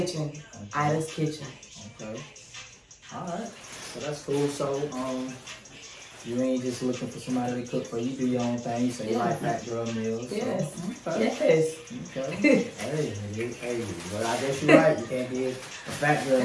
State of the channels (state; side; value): identical; both; correlation 1.00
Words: Ida's Kitchen. Okay. All right. So that's cool. So you ain't just looking for somebody to cook for you. Do your own thing. So you like fat girl meals. Yes. So. Okay. Yes. Okay. hey. Well, I guess you're right. You can't be a fat girl